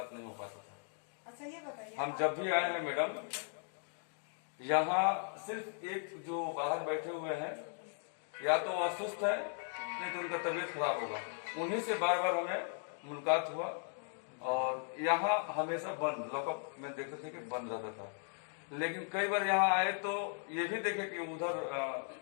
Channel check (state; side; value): silent; right; 53 dB below the other